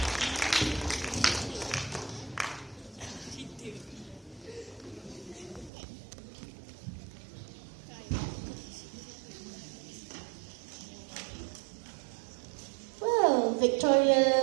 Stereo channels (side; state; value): left; drops out; at 5.7 s